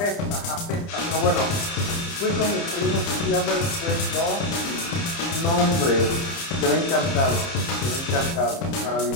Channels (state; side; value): late; right; 30 ms